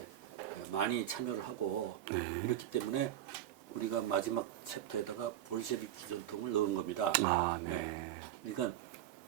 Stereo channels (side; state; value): left; quieter; 12.2 dB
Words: 많이 참여를 하고 이렇기 때문에 우리가 마지막 챕터에다가 볼셰비키 전통을 넣은 겁니다. 네. 그러니까